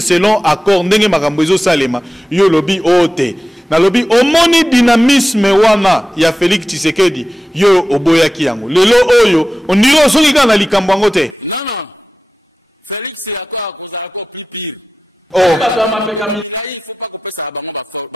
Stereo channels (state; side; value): normal; both; correlation 0.95